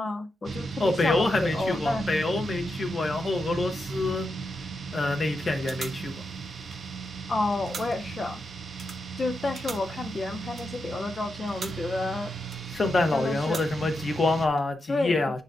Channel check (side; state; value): both; normal; correlation 0.86